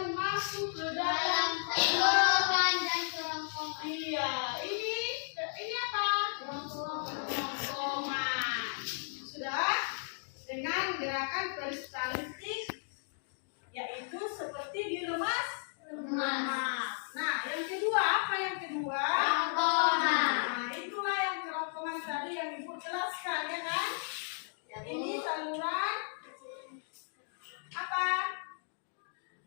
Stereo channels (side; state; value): right; silent; digital silence